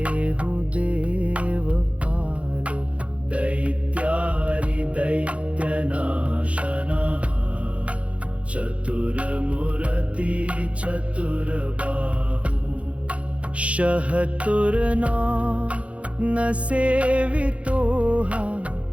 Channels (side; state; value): left; late; 0.063 ms